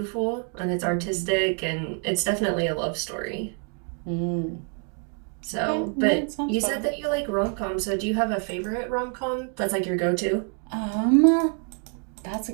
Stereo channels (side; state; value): left; quieter; 37.6 dB